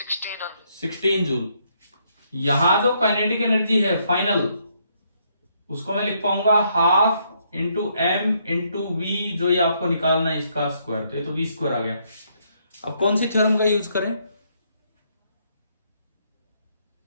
जूल। यहां जो काइनेटिक एनर्जी है फाइनल, उसको मैं लिख पाऊंगा half into M into V, जो ये आपको निकालना है इसका स्क्वायर, तो ये तो वी स्क्वायर आ गया। अब कौन सी थ्योरम का यूज करें?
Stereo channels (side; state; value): both; inverted; correlation -0.72